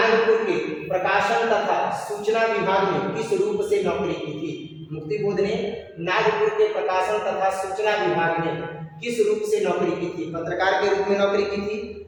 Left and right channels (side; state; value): both; identical; correlation 1.00